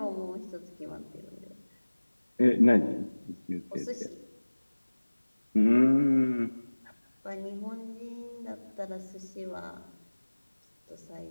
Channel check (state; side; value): inverted; both; correlation -1.00